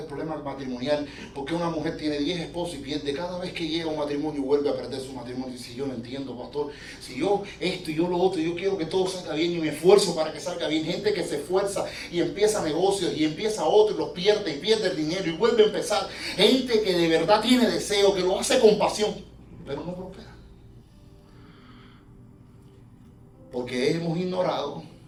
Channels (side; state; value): both; identical; correlation 1.00